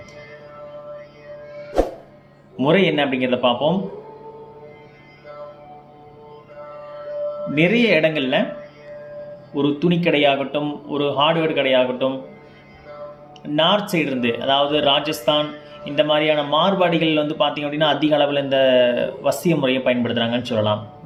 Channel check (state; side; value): identical; both; correlation 1.00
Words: முறை என்ன அப்படிங்கிறத பார்ப்போம். நிறைய இடங்களில் ஒரு துணி கடையாகட்டும், ஒரு ஹார்ட்வேர் கடையாகட்டும், நார்த் சைடு இருந்து, அதாவது ராஜஸ்தான் இந்த மாதிரியான மார்வாடிகள் பார்த்திங்க அப்படின்னா அதிக அளவில் இந்த வசிய முறையை பயன்படுத்துகிறாங்கன்னு சொல்லலாம்.